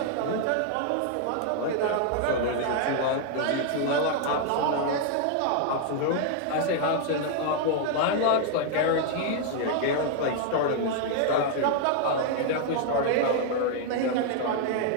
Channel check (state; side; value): different; both; correlation -0.01